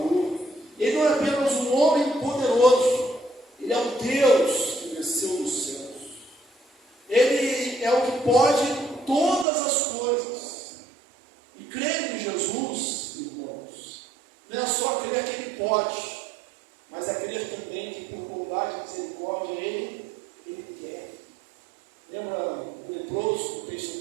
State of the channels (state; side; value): drops out; left; at 9.5 s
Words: Ele não é apenas um homem poderoso. Ele é o Deus que desceu dos céus. Ele é o que pode todas as coisas. E crer em Jesus, irmãos, não é só crer que Ele pode, mas é crer também que por bondade e misericórdia Ele quer. Lembra o leproso do texto